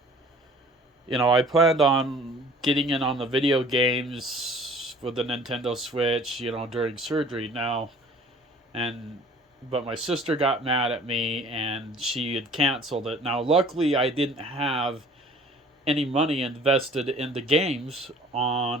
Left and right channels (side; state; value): both; normal; correlation 0.50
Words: I planned on getting in on the video games with the Nintendo Switch, during surgery now. But my sister got mad at me, and she had canceled it. Now, luckily, I didn't have any money invested in the games